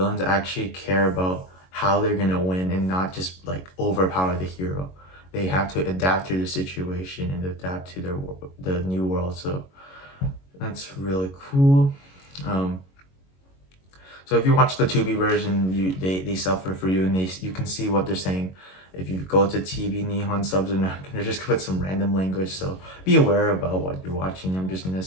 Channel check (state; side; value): late; right; 21 ms